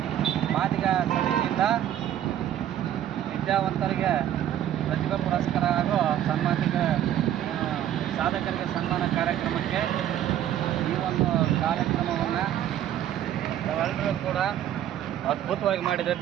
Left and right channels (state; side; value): quieter; left; 11.3 dB